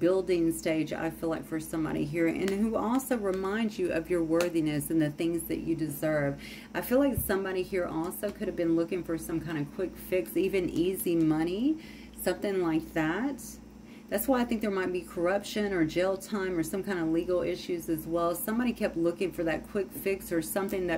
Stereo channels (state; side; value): identical; both; correlation 1.00